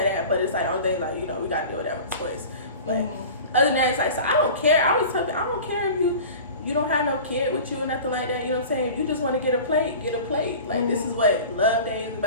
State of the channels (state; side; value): inverted; both; correlation -0.37